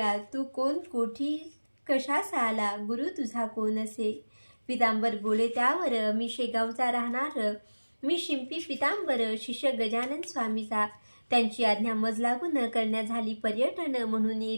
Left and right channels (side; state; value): both; inverted; correlation -1.00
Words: तू कोण, कोठी, कशास आला, गुरु तुझा कोण असे. पितांबर बोले त्यावर, मी शेगावचा राहणार, मी शिंपी पितांबर, शिष्य गजानन स्वामीचा. त्यांची आज्ञा मज लागून करण्या झाली पर्यटन, म्हणून